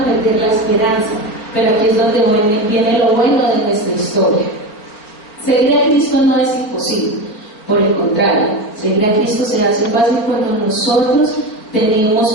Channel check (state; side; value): late; right; 4.5 ms